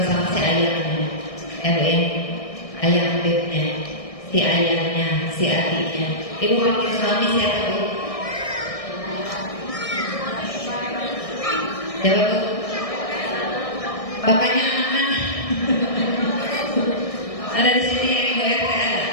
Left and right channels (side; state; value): right; late; 1.6 ms